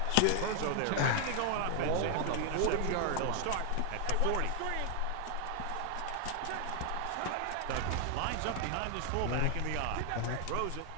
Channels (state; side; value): different; both; correlation 0.00